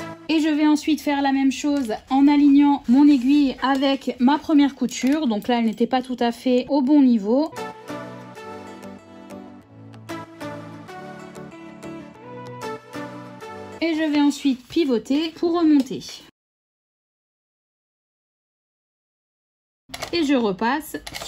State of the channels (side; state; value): both; identical; correlation 1.00